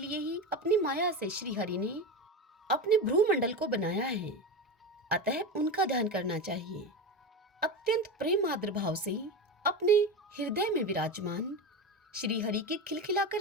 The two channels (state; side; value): normal; both; correlation 0.21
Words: ही अपनी माया से श्री हरि ने अपने भ्रूमंडल को बनाया है, अतः उनका ध्यान करना चाहिए। अत्यंत प्रेम आदर भाव से अपने हृदय में विराजमान श्री हरि के